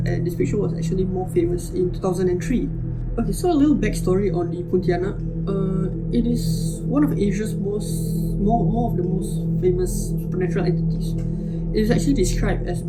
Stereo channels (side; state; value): both; identical; correlation 1.00